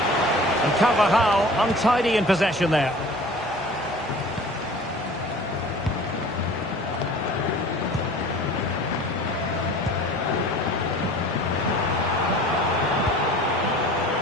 And Carvajal untidy in possession there.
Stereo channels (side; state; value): both; normal; correlation 0.44